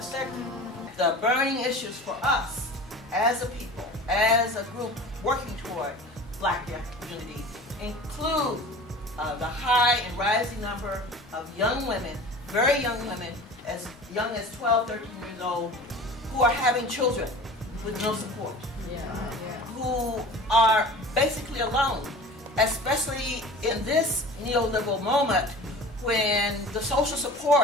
sector. The burning issues for us as a people, as a group working toward black unity, include the high and rising number of young women, very young women, as young as 12, 13 years old, who are having children with no support, who are basically alone, especially in this neoliberal moment when the social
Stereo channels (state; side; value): normal; both; correlation 0.39